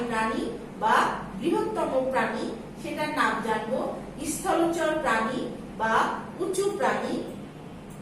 প্রাণী বা বৃহত্তম প্রাণী সেটার নাম জানবো। স্থলচর প্রাণী বা উঁচু প্রাণী।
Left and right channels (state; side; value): identical; both; correlation 1.00